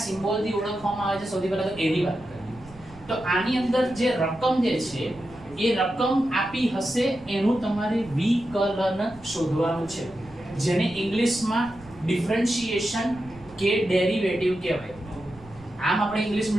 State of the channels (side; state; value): right; noise; rumble, 22 dB below the sound